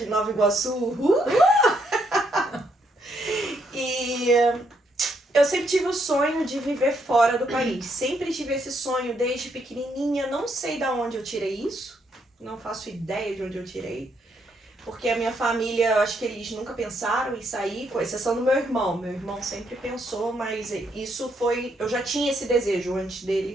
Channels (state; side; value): normal; both; correlation 0.74